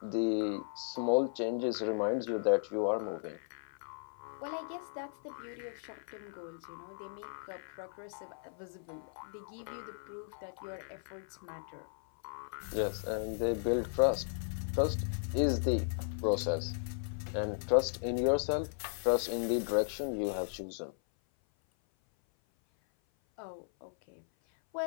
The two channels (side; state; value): right; silent; 54 dB below the other